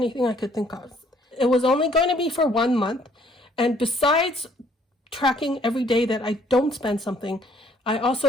I could think of. It was only going to be for 1 month. And besides tracking every day that I don't spend something, I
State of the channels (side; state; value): both; normal; correlation 0.62